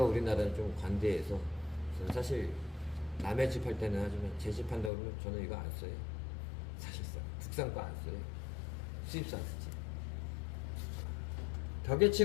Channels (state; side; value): drops out; right; at 4.9 s